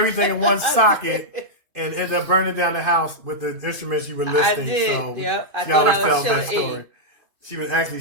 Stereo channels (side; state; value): left; late; 2.8 ms